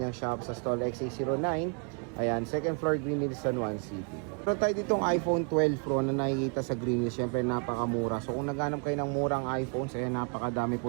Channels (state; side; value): quieter; left; 39.9 dB